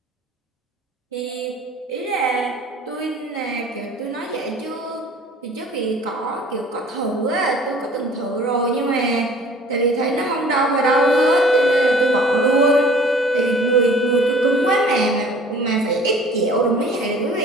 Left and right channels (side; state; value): both; normal; correlation 0.49